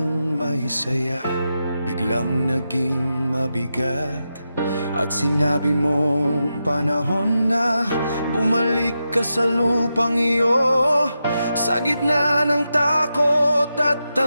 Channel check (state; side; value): inverted; both; correlation -0.88